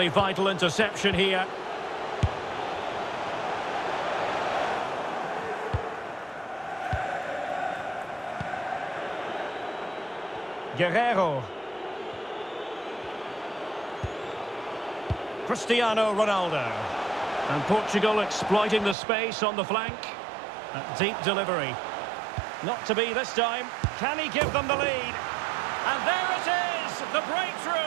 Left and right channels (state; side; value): drops out; left; at 18.9 s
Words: vital interception here. Guerreiro. Cristiano Ronaldo. And Portugal exploiting the space on the flank. A deep delivery. Not to be this time. Can he give them the lead? And there it is, the